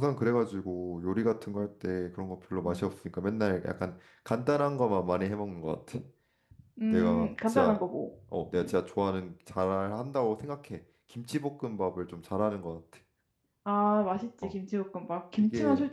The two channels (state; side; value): identical; both; correlation 1.00